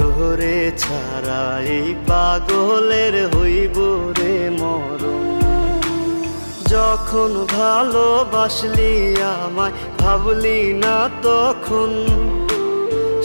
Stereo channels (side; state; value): both; inverted; correlation -1.00